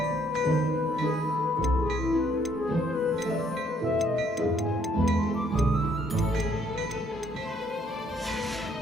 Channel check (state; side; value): normal; both; correlation 0.68